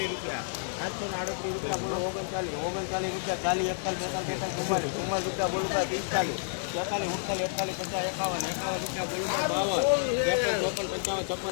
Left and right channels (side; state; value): right; silent; digital silence